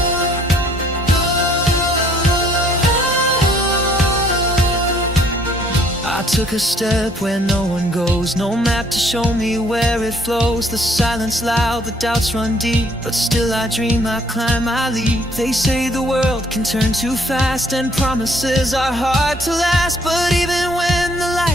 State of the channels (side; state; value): both; normal; correlation 0.63